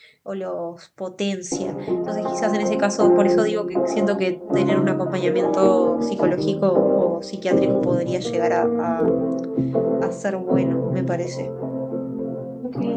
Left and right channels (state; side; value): identical; both; correlation 1.00